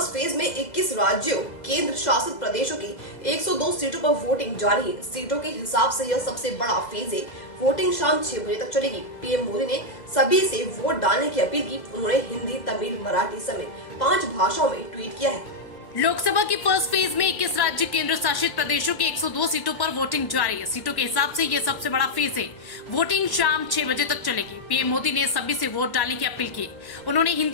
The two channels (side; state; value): right; late; 2.0 ms